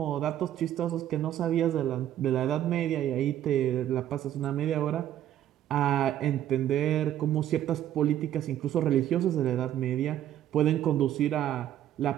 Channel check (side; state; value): left; quieter; 11.6 dB